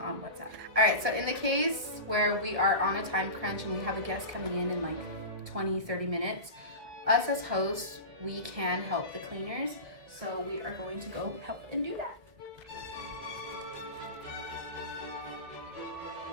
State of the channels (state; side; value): late; left; 1.9 ms